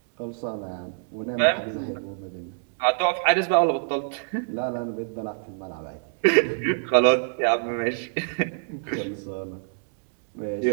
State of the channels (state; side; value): silent; left; digital silence